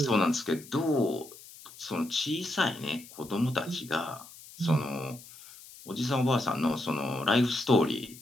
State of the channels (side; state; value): left; noise; hiss, 19 dB below the sound